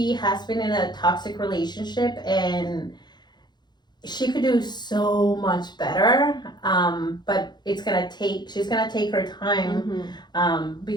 has been in a toxic relationship, and she could do so much better, but she's gonna take her time,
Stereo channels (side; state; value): right; late; 0.21 ms